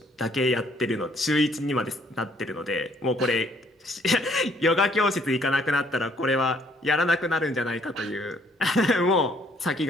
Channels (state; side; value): normal; both; correlation 0.65